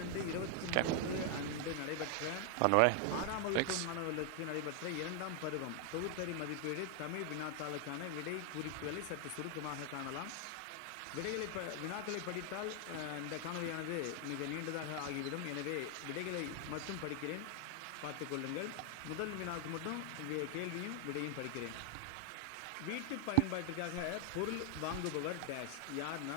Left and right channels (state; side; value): different; both; correlation 0.00